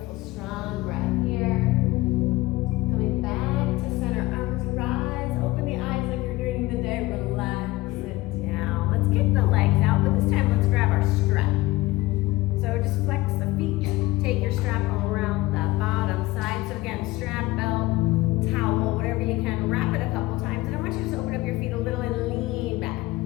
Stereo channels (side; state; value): right; quieter; 19.3 dB